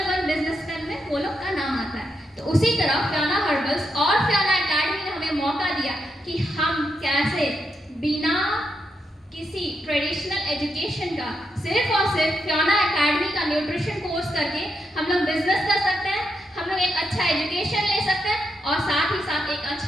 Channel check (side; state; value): both; normal; correlation 0.82